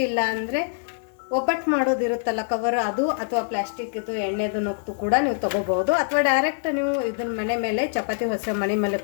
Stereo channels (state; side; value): silent; right; digital silence